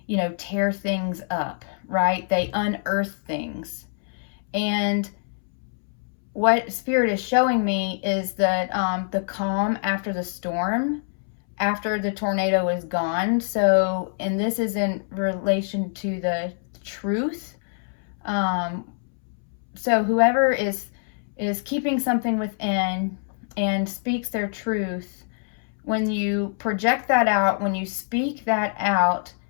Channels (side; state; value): right; silent; 62 dB below the other